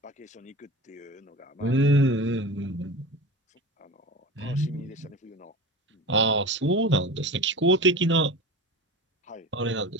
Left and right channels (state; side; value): normal; both; correlation 0.31